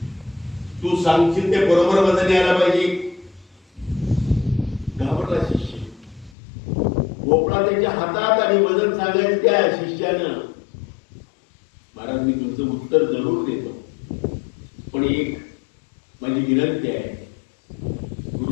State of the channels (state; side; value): drops out; right; at 6.4 s